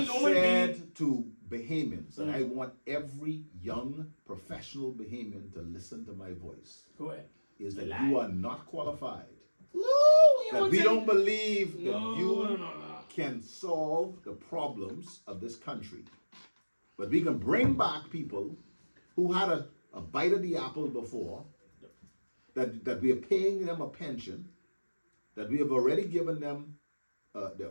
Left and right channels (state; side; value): inverted; both; correlation -1.00